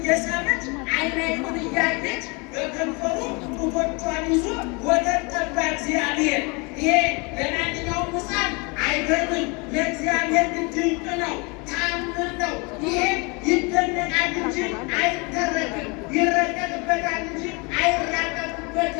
ዓይን ዓይኑን እያየች በከንፈሩ ጡቶቿን ይዞ ወተት ጠባ እግዚአብሔር። ይሄ ለማንኛውም ሕፃን አይገርምም፣ ለእግዚአብሔር ግን ድንቅ ነው፣ ተአምር ነው። ይሄ ይደነቃል እንጂ አይተረክም፣ ይረቀቅበታል እንጂ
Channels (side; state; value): right; quieter; 29.6 dB